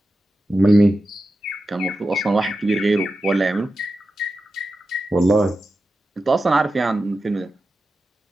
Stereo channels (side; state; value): both; normal; correlation 0.91